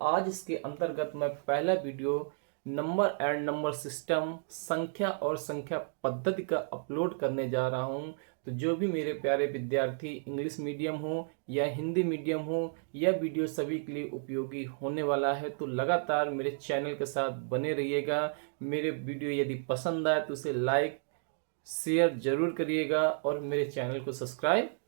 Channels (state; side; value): silent; left; digital silence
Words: आज इसके अंतर्गत मैं पहला video number and number system, संख्या और संख्या पद्धति का अपलोड करने जा रहा हूं। तो जो भी मेरे प्यारे विद्यार्थी इंग्लिश मीडियम हो या हिंदी मीडियम हो, यह वीडियो सभी के लिए उपयोगी होने वाला है। तो लगातार मेरे चैनल के साथ बने रहिएगा। मेरे वीडियो यदि पसंद आए तो उसे लाइक शेयर जरूर करिएगा और मेरे चैनल को सब्सक्राइब